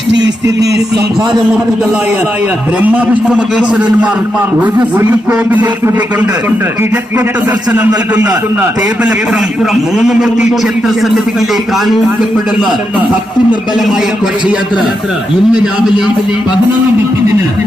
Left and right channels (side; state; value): both; normal; correlation 0.84